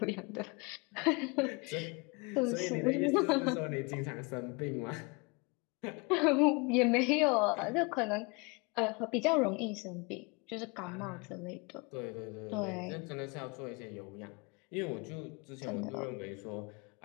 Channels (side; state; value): right; quieter; 29.4 dB